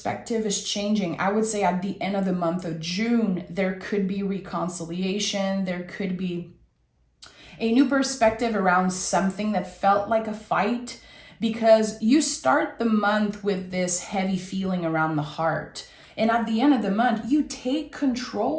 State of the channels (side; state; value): both; identical; correlation 1.00